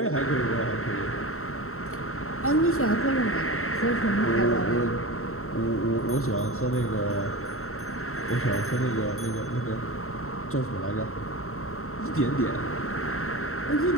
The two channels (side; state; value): right; late; 0.63 ms